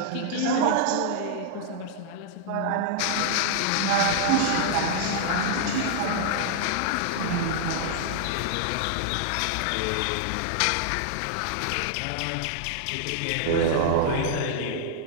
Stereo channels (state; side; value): different; both; correlation -0.01